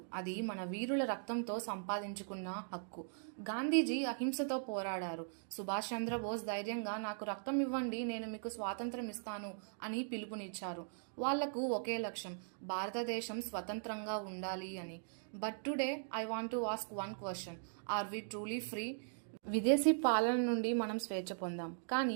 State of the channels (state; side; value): silent; left; digital silence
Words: అది మన వీరుల రక్తంతో సంపాదించుకున్న హక్కు. గాంధీజీ అహింసతో పోరాడారు. సుభాష్ చంద్రబోస్ ధైర్యంగా నాకు రక్తం ఇవ్వండి, నేను మీకు స్వాతంత్రం ఇస్తాను అని పిలుపునిచ్చారు. వాళ్లకు ఒకే లక్ష్యం, భారతదేశం స్వతంత్రంగా ఉండాలి అని. But today I want to ask one question, are we truly free? విదేశీ పాలన నుండి మనం స్వేచ్ఛ పొందాం, కానీ